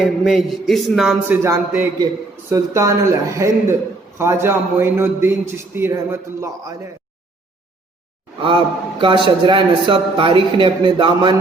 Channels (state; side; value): quieter; left; 3.2 dB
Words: میں اس نام سے جانتے ہیں کہ سلطان الہند خواجہ معین الدین چشتی رحمۃ اللہ علیہ. آپ کا شجرہ نسب تاریخ نے اپنے دامن